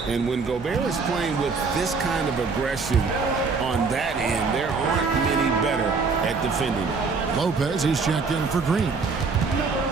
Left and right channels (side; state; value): left; quieter; 4.7 dB